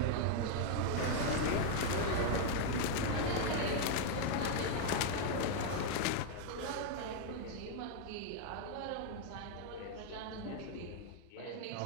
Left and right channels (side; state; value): both; different; correlation 0.00